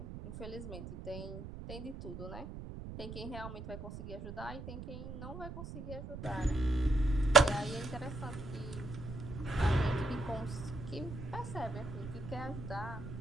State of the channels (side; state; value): right; noise; rumble, 9 dB below the sound